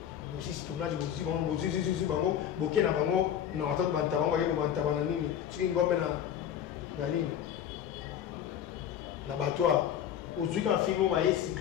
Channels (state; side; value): quieter; right; 9.7 dB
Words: Bosi tournage bosi bango boké na bango non attends banta bango yebo banta bana nini soki ngombe na nini na batwa ozwi ka film ma yesi